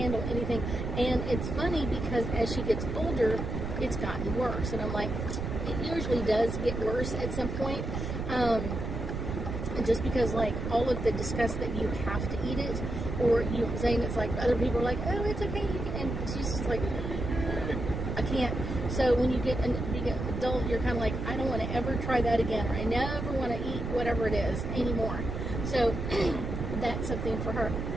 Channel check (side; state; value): right; noise; rumble, 4 dB below the sound